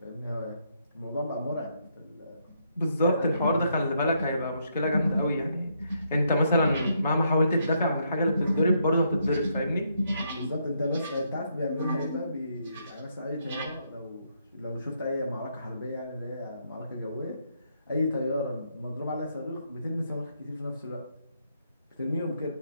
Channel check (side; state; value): both; inverted; correlation -0.75